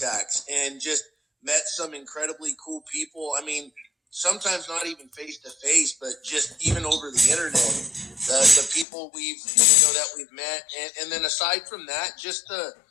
and just met some incredibly cool people. I mean, sometimes not even face to face, but just even over the internet. The people that we've met, and then aside from that, just the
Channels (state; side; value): drops out; right; at 8.8 s